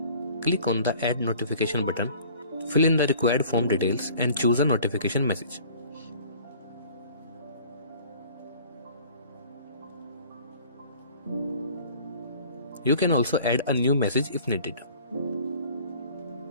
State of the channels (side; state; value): both; inverted; correlation -0.49